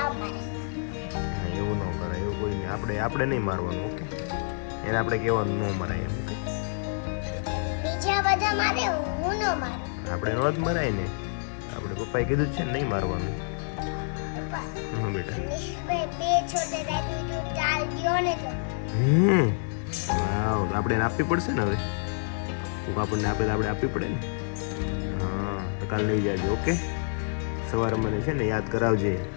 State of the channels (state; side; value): silent; right; 59 dB below the other